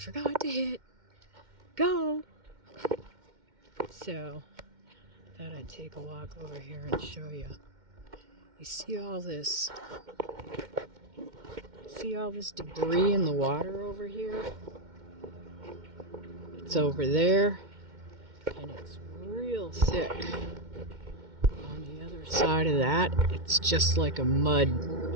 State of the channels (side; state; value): left; late; 2.1 ms